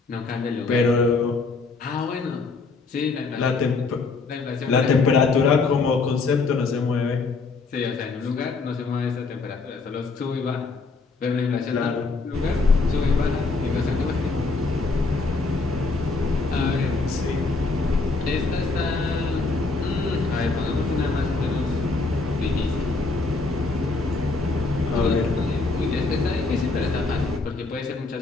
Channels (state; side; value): quieter; right; 4.0 dB